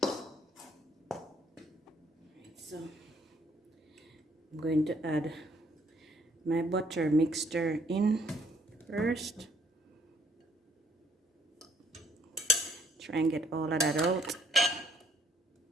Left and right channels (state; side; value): normal; both; correlation 0.65